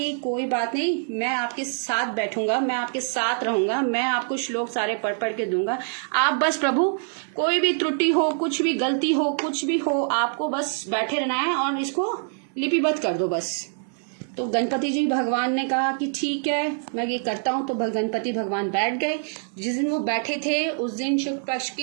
कोई बात नहीं, मैं आपके साथ बैठूंगा, मैं आपके साथ रहूंगा, मैं आपको श्लोक सारे पढ़ के दूंगा, आप बस प्रभु कोई भी त्रुटि हो, कुछ भी गलती हो, कुछ भी हो, आपको बस बैठे रहना है और इसको लिपिबद्ध कर दो बस। तो गणपति जी भगवान ने कहा कि ठीक है मैं ये करता हूँ। तो गणपति भगवान बैठ गए। जिस दिन वो बैठे थे उस दिन शुक्ल पक्ष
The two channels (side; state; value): left; silent; 62 dB below the other